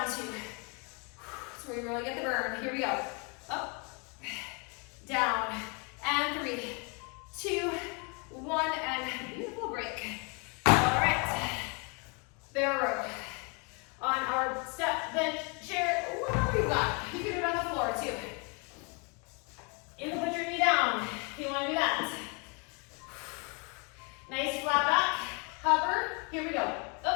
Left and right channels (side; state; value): right; quieter; 33.2 dB